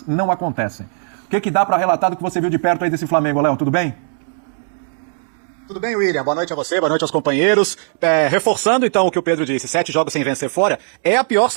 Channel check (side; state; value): left; silent; digital silence